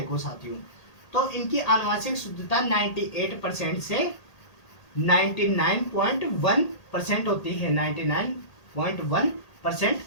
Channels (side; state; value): right; late; 1.8 ms